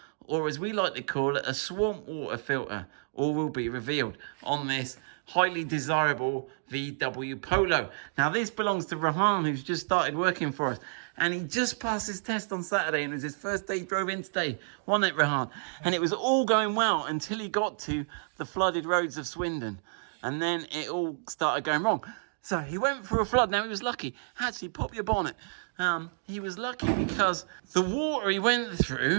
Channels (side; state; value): left; silent; digital silence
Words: or as we like to call it, a swamp water filter. All will be revealed on this highly desirable VW Polo. Now, this belongs to Rehan, who's just started working for us. And he just passed his test on Saturday, and it was his first day he drove in today, wasn't it, Rehan? And it was all going well until he got to the flooded roads of Swindon. And then it all started going wrong. So he went through a flood. Now, he was lucky. Actually, pop your bonnet. He was lucky because the water he went